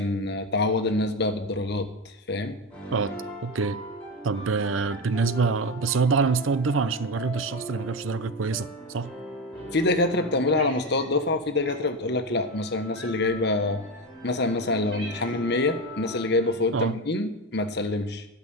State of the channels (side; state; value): both; normal; correlation 0.17